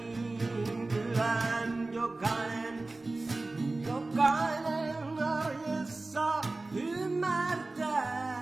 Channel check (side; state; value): left; quieter; 3.2 dB